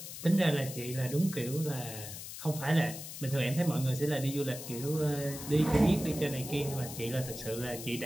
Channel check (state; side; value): noise; left; hiss, 10 dB below the sound